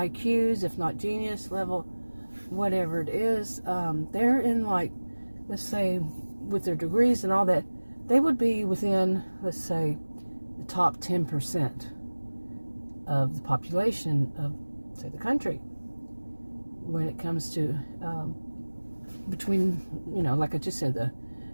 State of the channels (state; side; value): inverted; both; correlation -1.00